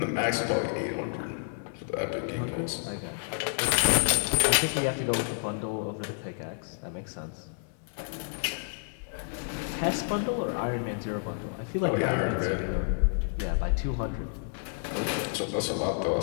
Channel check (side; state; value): right; silent; 58 dB below the other